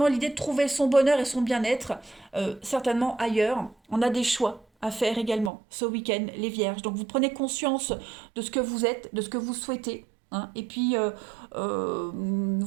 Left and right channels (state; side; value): drops out; left; at 5.5 s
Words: l'idée de trouver son bonheur et son bien-être, certainement ailleurs. On a des choix à faire également ce week-end, les Vierges. Donc vous prenez conscience de ce que vous êtes, de ce que vous souhaitez, hein. Et puis, euh,